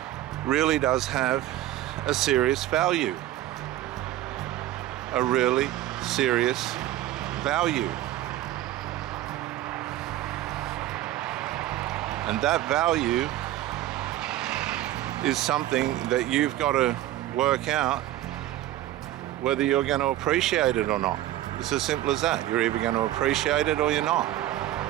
really does have a serious value. A really serious value. And that value is something that you've got to work out whether you're going to appreciate it or not. It's as simple as that. You're either going to appreciate it or you're not.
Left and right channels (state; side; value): quieter; left; 14.3 dB